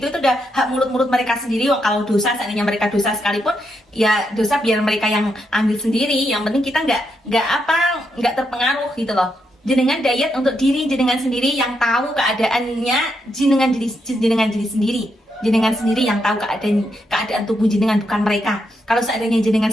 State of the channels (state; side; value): normal; both; correlation 0.81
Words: itu udah hak mulut mereka sendiri. Kalau dosa, seandainya mereka dosa sekalipun ya dosa biar mereka yang ambil sendiri. Yang penting kita nggak terpengaruh gitu loh. Jenengan diet untuk diri jenengan sendiri, yang tahu keadaannya jenengan diri sendiri. Jenengan sendiri yang tahu keadaan tubuh jenengan, bukan mereka. Kalau seandainya jenengan